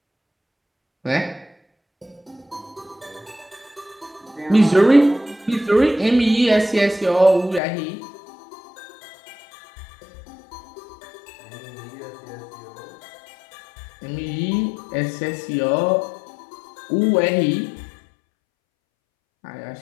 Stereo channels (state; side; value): drops out; right; at 7.6 s